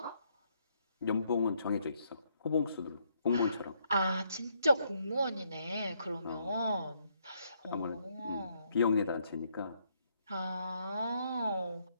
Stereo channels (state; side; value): inverted; both; correlation -0.73